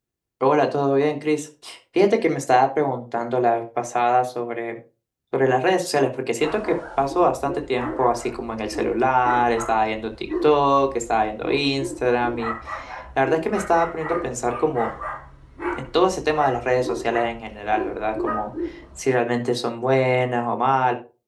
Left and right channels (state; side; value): identical; both; correlation 1.00